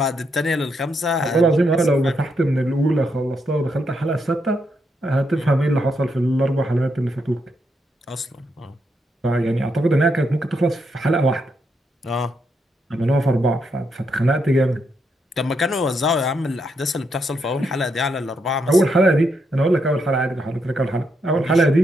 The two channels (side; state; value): both; normal; correlation 0.79